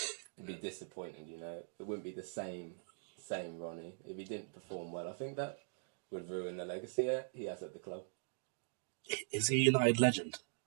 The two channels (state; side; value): silent; left; digital silence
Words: it'd be disappointing. It wouldn't be the same Ronnie if he didn't perform well. I think that would ruin the legacy he has at the club. Is he a United legend?